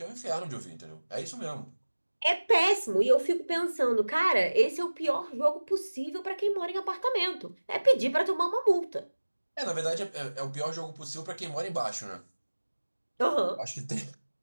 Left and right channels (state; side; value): inverted; both; correlation -1.00